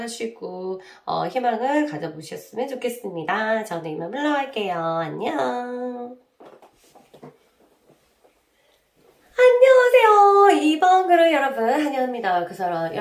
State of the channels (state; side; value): identical; both; correlation 1.00